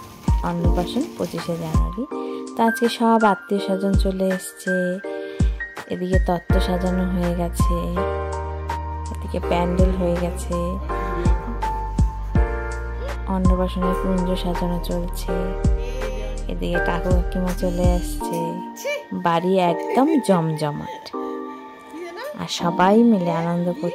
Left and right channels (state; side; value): identical; both; correlation 1.00